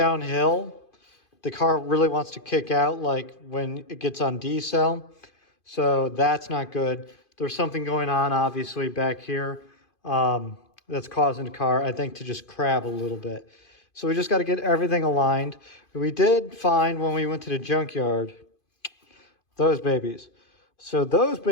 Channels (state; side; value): late; right; 2.5 ms